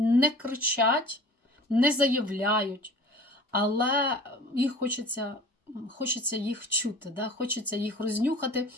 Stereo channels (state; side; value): normal; both; correlation 0.43